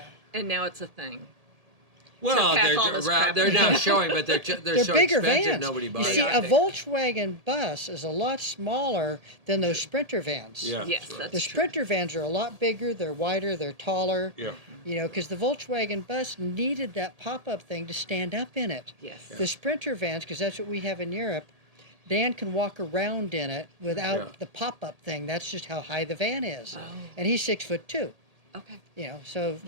And now it's a thing. Well, they're not showing, but they're so bigger expensive, vans. nobody You buys see, it. a Volkswagen bus is a lot smaller than those Sprinter vans. Yeah. Yes, that's The true. Sprinter vans are a lot bigger, they're wider, they're taller. Yeah. Because the Volkswagen bus needed that pop-up thing to stand up in it. Yes. The Sprinter vans, because that's what we have in Europe, Dan can walk around in it without the pop-up thing. That's just how high the van is. Oh. And he's 6'2". Okay. So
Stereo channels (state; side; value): late; left; 1.8 ms